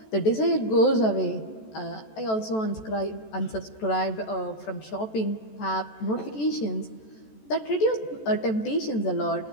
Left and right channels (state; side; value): late; right; 14 ms